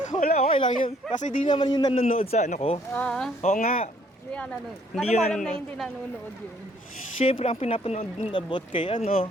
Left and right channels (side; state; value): both; normal; correlation 0.64